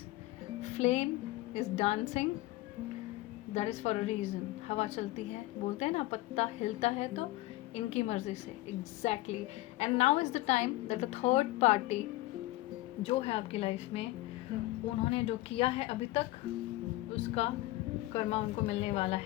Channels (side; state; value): right; quieter; 18.2 dB